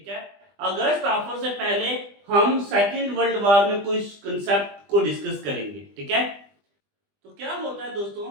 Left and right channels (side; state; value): left; late; 20 ms